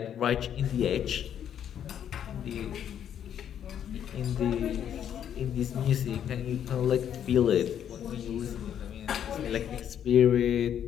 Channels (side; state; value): right; quieter; 9.4 dB